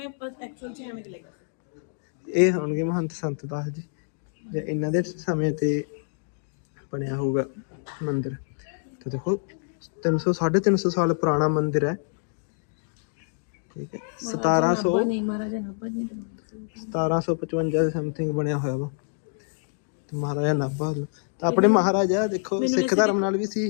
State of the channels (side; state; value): right; silent; digital silence